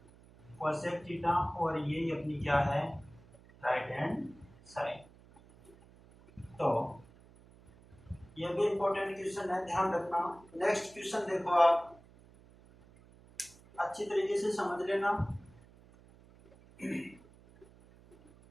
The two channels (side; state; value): right; noise; hum, 24 dB below the sound